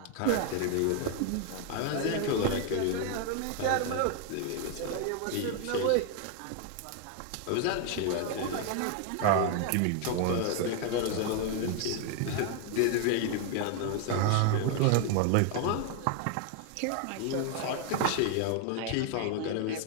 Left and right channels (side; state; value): both; different; correlation 0.00